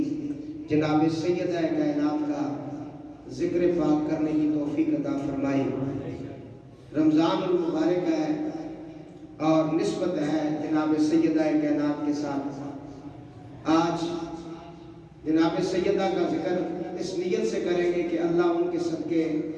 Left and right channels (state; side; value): identical; both; correlation 1.00